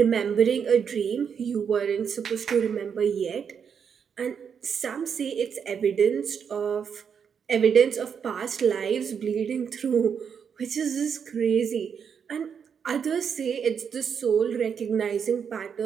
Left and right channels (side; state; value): left; quieter; 7.1 dB